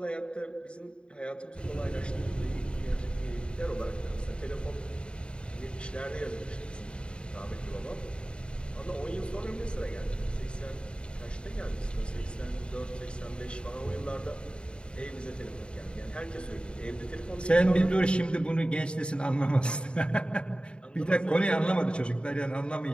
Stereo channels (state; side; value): late; right; 0.053 ms